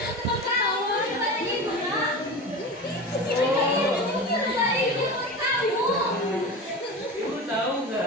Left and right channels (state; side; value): normal; both; correlation 0.29